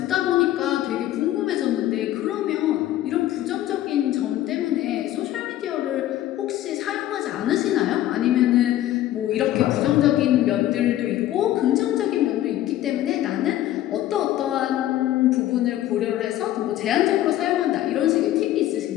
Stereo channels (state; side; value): quieter; right; 13.6 dB